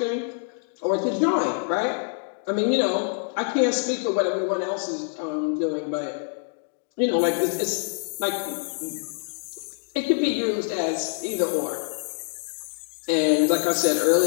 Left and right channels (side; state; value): right; silent; 61 dB below the other